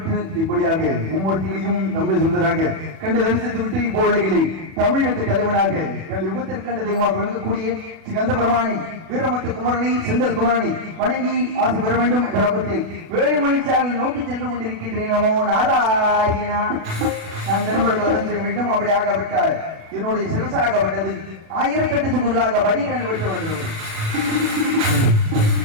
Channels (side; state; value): left; late; 37 ms